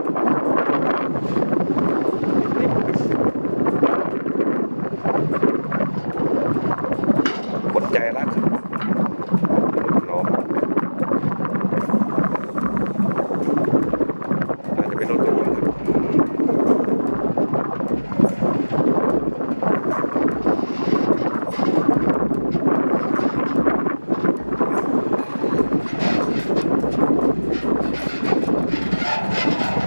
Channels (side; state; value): both; inverted; correlation -1.00